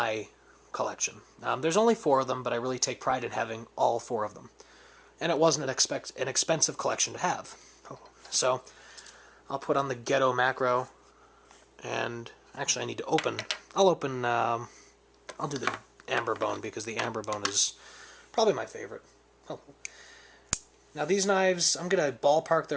collection. There's only 4 of them, but I really take pride in having all 4 of them. And it wasn't an expensive collection to have. So I'll put on the Ghetto Macro, and actually I need to open, I'll do the Amber Bone, because the Amber Bone is probably my favorite. Oh. Now these knives, I'm going to ballpark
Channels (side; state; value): both; identical; correlation 1.00